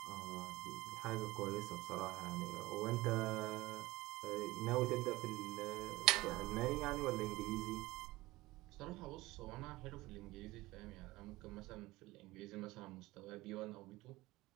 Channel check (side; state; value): left; quieter; 19.6 dB